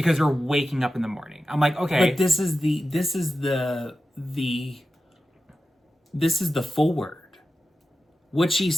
you're waking up in the morning. I'm like, okay. But this is the forward. What she's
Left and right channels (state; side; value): normal; both; correlation 0.92